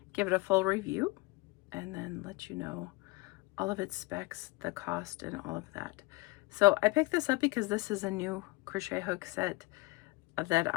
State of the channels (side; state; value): right; quieter; 23.9 dB